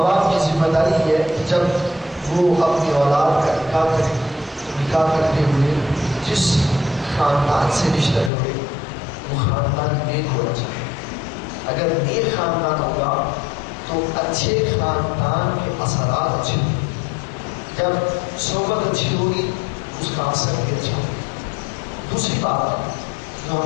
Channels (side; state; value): right; drops out; at 8.3 s